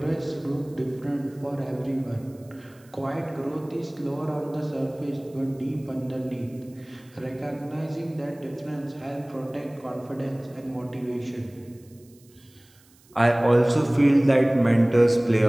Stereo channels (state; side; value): noise; right; hiss, 29 dB below the sound